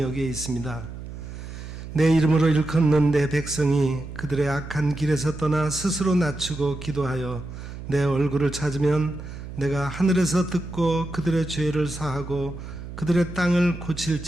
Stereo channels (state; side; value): noise; right; hum, 11 dB below the sound